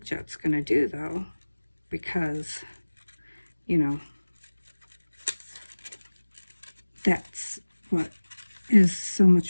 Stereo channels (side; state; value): both; inverted; correlation -1.00